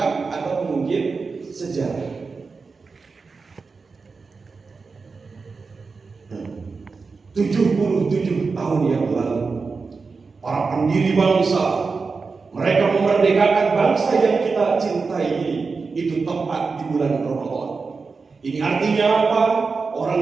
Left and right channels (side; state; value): left; quieter; 4.6 dB